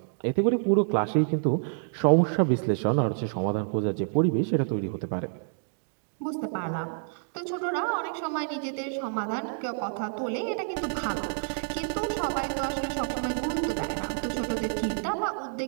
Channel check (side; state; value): left; silent; digital silence